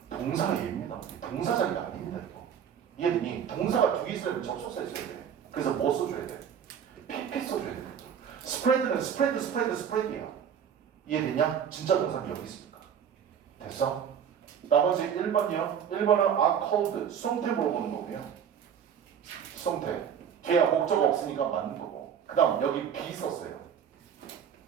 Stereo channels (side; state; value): left; quieter; 8.2 dB